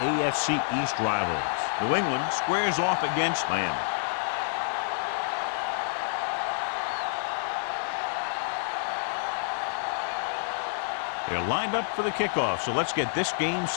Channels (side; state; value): right; silent; digital silence